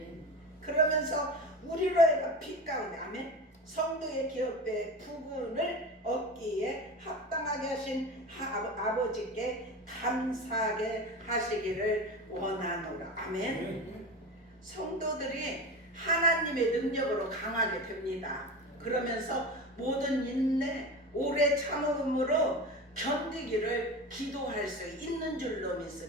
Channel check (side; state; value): both; normal; correlation 0.28